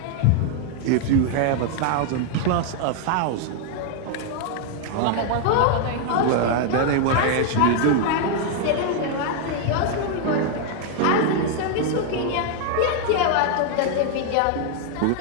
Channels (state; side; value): different; both; correlation 0.00